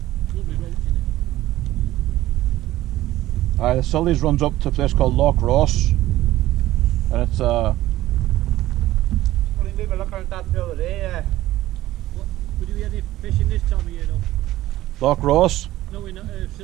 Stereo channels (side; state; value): left; quieter; 15.5 dB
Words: lovely roach in it. The Sully's runs up to a place called Loch Ross, and it's Well, we were looking at that the other day. What, would you be any fishing this time of year though? Loch Ross. No, in